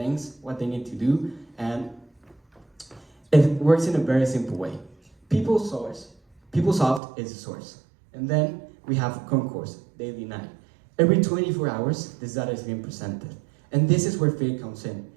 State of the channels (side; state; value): left; drops out; at 7.0 s